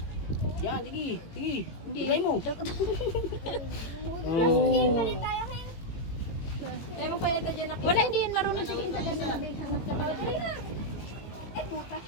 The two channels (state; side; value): late; right; 18 ms